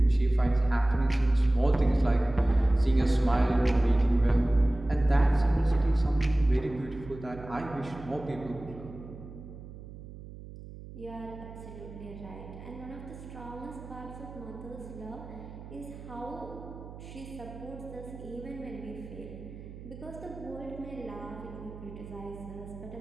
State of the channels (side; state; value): right; noise; hum, 14 dB below the sound